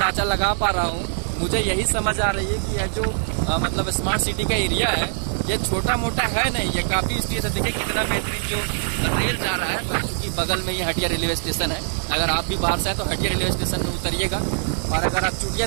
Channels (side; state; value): left; silent; digital silence